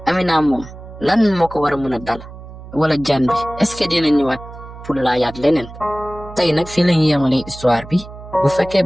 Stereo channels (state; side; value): noise; right; hum, 15 dB below the sound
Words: Amina moom lan moo ko war a mën a dal wala jaan bi est-ce que dina ñëwaat pour laayaat leneen tey nag fii la ñu yemale histoire bi bu fekkee